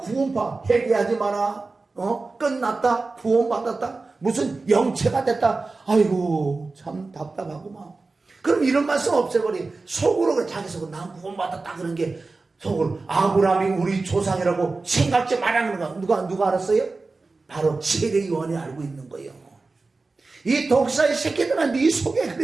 회개하지 마라. 끝났다 구원받았다 무슨 영체가 됐다. 아이고 참 답답하구만. 그럼 이런 말씀 없애버리. 속으로 자기 속으로 난 구원받았다 그런 게 속으로 아브라함이 우리 조상이라고 생각지 말라는 거 누가 알았어요? 바로 세례요한이 알고 있는 거예요. 이 독사의 새끼들은 네 속에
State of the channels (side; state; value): left; quieter; 3.7 dB